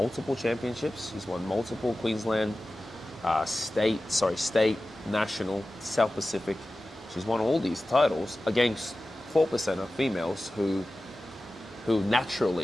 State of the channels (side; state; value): both; normal; correlation 0.95